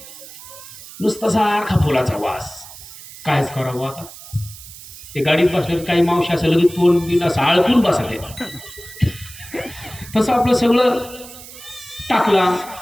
नुसता सारखा फुलाचा वास. कायच करावं आता? ते गाडीत बसल्यावर काही मावशी असं लगेच तोंड बिन असं आळपून बसले. तसं आपलं सगळं टाकला,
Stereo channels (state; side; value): noise; right; hiss, 16 dB below the sound